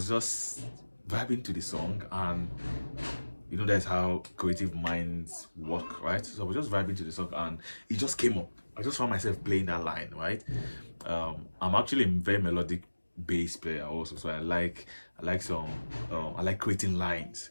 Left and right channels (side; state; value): both; inverted; correlation -1.00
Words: just vibing to the song, and you know that's how creative minds work, right? So I was just vibing to the song, and it just came up. I just found myself playing that line, right? I'm actually a very melodic bass player also, so I like some I like creating lines.